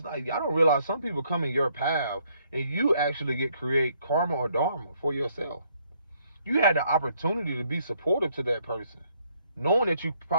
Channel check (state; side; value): inverted; both; correlation -0.69